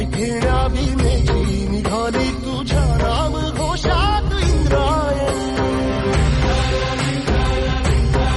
घेण्या भीमेची निघाली तुझ्या राम घोषात इंद्रायणी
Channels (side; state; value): both; identical; correlation 1.00